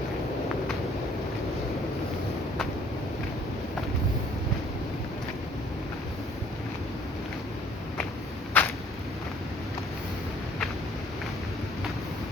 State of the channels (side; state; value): both; normal; correlation 0.58